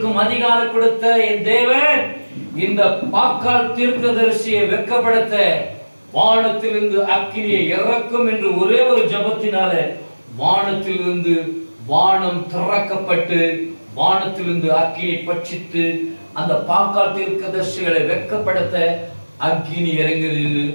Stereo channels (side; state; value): both; inverted; correlation -1.00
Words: அதிகாரம் கொடுத்த என் தேவன் இந்த பாக்கால் தீர்க்கதரிசியை வெட்கப்படுத்த வானத்திலிருந்து அக்கினியை இறக்கும் என்று ஒரே ஒரு ஜபத்தினால வானத்திலிருந்து வானம் திறக்கப்பட்டு வானத்திலிருந்து அக்கினி பட்சித்து அந்த பாக்கால் தீர்க்கதரிசிகளை வெட்கப்படுத்த அக்கினி